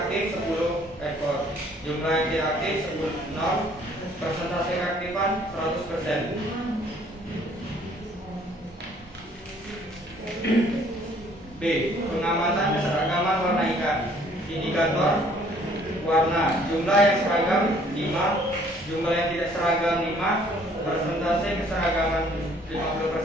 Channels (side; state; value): both; normal; correlation 0.59